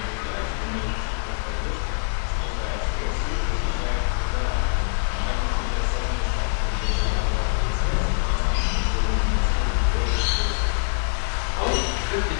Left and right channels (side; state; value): right; silent; digital silence